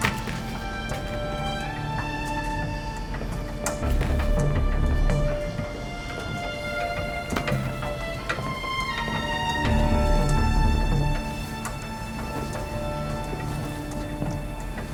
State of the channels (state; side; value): identical; both; correlation 1.00